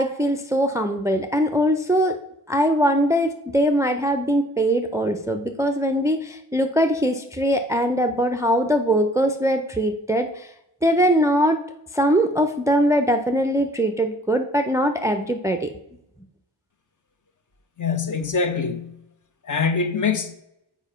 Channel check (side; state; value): both; normal; correlation 0.55